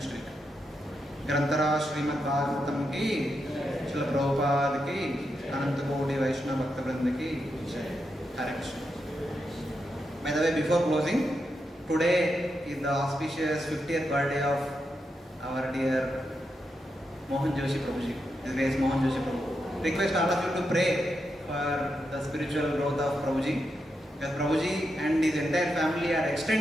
week. Grantara Srimad Bhagavatam ki, Srila Prabhupada ki, Ananta Kodi Vaishnava Bhakta Vrinda ki, Hare Krishna. By the way, before closing, today is the auspicious 50th birthday of our dear Mohan Joshi Prabhuji. His name is Mohan Joshi Prabhu. Request all of you to pray for the spiritual growth of Prabhuji. Because Prabhuji and his entire family are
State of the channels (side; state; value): both; normal; correlation 0.85